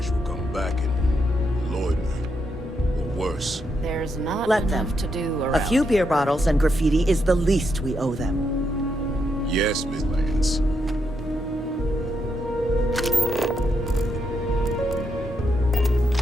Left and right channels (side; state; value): both; normal; correlation 0.80